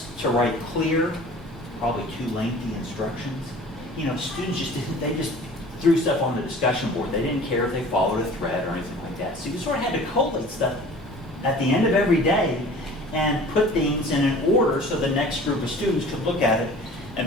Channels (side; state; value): both; normal; correlation 0.45